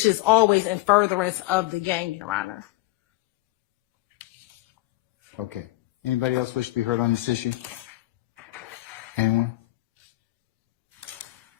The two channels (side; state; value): right; quieter; 19.3 dB